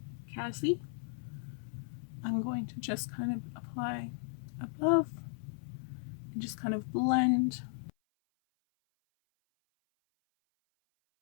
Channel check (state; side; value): silent; right; 54 dB below the other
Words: Cassie, I'm going to just kind of apply above and just kind of blend.